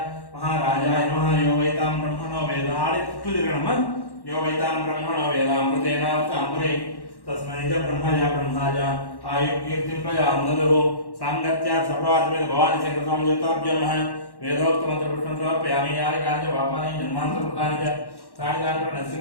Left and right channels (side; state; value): right; late; 1.1 ms